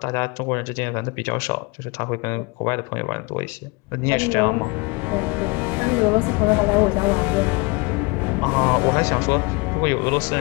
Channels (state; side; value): quieter; right; 27.8 dB